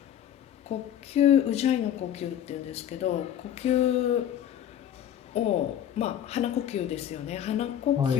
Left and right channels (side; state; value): right; quieter; 10.3 dB